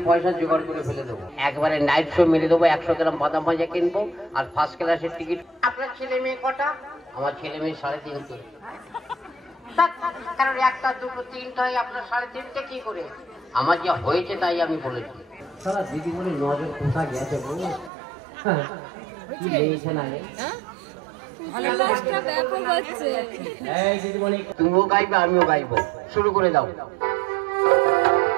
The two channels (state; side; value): drops out; left; at 17.9 s